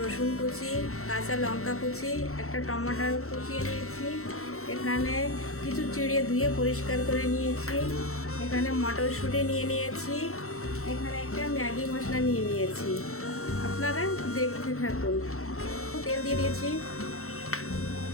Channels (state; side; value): late; right; 0.63 ms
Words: কুচি, কাঁচা লঙ্কা কুচি, একটা টমেটো কুচিয়ে নিয়েছি। এখানে কিছু চিড়ে ধুয়ে পরিষ্কার করে নিয়েছি। এখানে মটরশুঁটি নিয়ে নিয়েছি। এখানে একটা ম্যাগি মশলা নিয়ে নিয়েছি। আপনারা দেখতে থাকুন। তেল দিয়ে দিয়েছি।